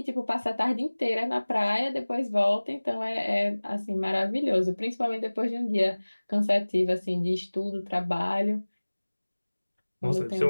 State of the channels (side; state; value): both; inverted; correlation -1.00